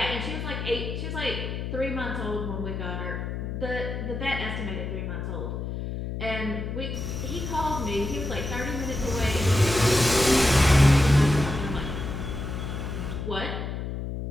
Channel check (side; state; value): left; noise; hum, 5 dB below the sound